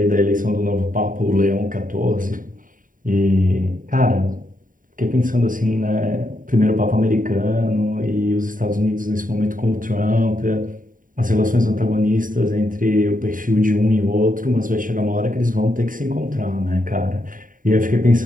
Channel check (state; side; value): late; left; 0.39 ms